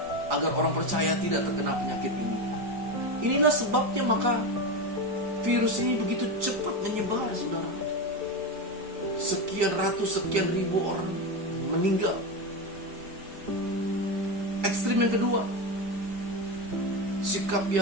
agar orang percaya tidak terkena penyakit ini. Inilah sebabnya maka virus ini begitu cepat menyebar, saudara. Sekian ratus, sekian ribu orang meninggal. Ekstrim yang kedua, sikap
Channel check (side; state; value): left; late; 4.7 ms